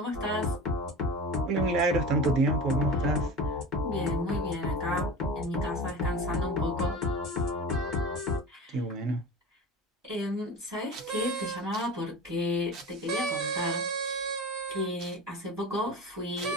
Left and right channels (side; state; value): both; normal; correlation 0.31